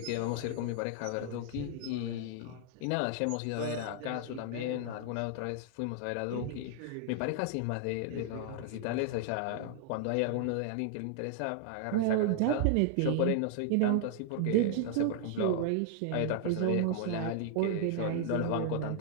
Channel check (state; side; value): different; both; correlation -0.01